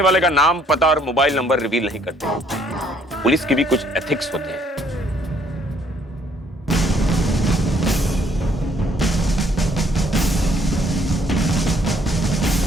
वाले का नाम, पता और मोबाइल नंबर रिवील नहीं करते। पुलिस की भी कुछ एथिक्स होते हैं।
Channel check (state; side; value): normal; both; correlation 0.64